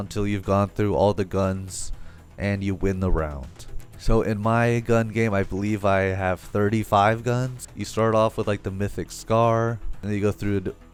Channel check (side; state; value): both; identical; correlation 1.00